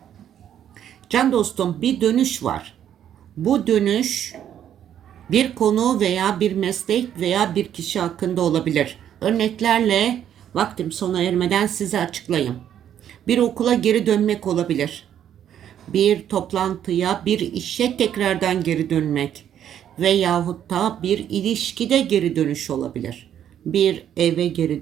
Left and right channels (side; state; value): left; quieter; 10.0 dB